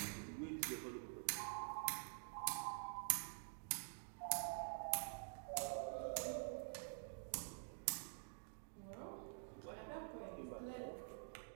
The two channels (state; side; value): silent; left; digital silence